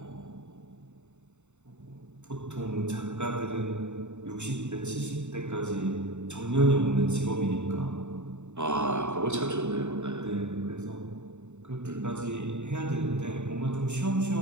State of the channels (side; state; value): left; late; 0.83 ms